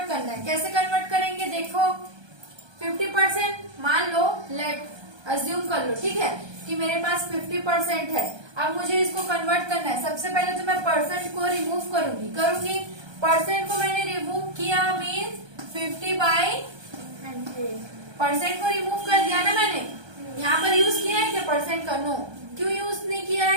करना है। कैसे कन्वर्ट करेंगे, देखो 50% मान लो, लेट अज्यूम कर लो, ठीक है, कि मेरे पास 50% है। अब मुझे इसको कन्वर्ट करना है। सबसे पहले तो मैं परसेंट को रिमूव करूंगी। परसेंट को मैंने रिमूव किया, मीन्स 50/100। परसेंट को रिमूव कर दिया ना मैंने। यहाँ पर यूज किया है क्या परसेंट का, नो। क्यों यूज नहीं किया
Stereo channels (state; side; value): late; left; 1.3 ms